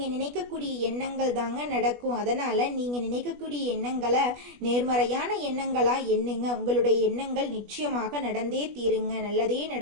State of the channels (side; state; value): left; late; 20 ms